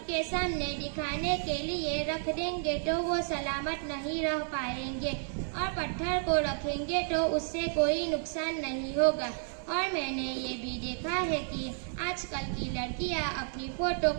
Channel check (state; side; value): silent; left; 57 dB below the other